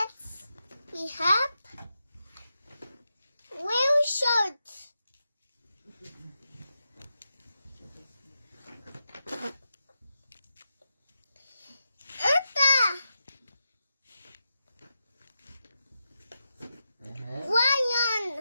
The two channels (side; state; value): both; inverted; correlation -0.88